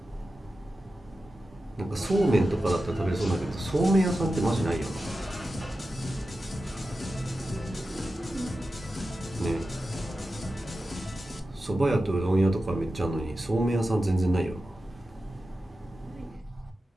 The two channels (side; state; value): both; normal; correlation 0.92